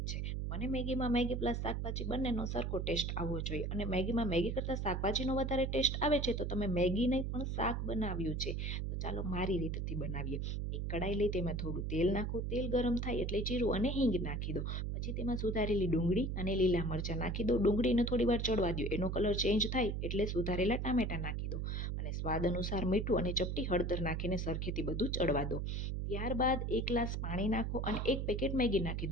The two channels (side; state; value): right; noise; hum, 1 dB below the sound